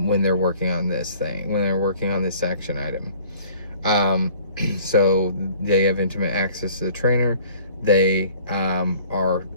they're working on this thing, when they're working on this action item. So they have intimate access to the trainer. They are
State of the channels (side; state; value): both; inverted; correlation -0.52